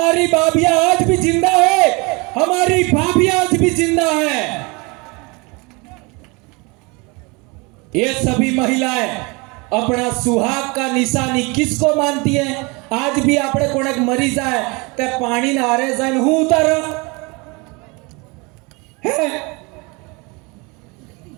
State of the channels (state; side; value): quieter; left; 27.9 dB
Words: भाभियां आज भी जिंदा है, हमारी भाभियां आज भी जिंदा है। ये सभी महिलाएं अपना सुहाग का निशानी किसको मानती है? आज भी आपने कोने मरी जाए ते पानी ना हारे जाए हूं उतार है